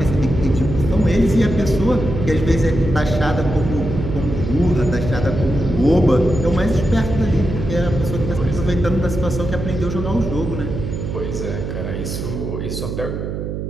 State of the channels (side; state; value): right; noise; hum, 5 dB below the sound